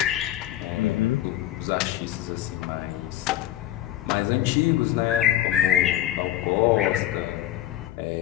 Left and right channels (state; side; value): quieter; right; 13.1 dB